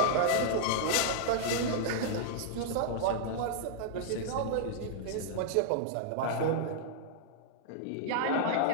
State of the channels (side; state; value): both; different; correlation -0.01